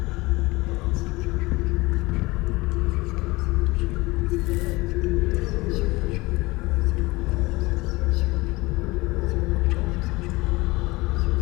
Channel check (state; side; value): quieter; right; 22.0 dB